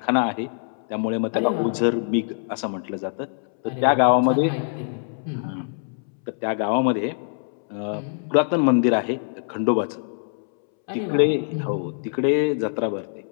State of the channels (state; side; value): silent; right; 63 dB below the other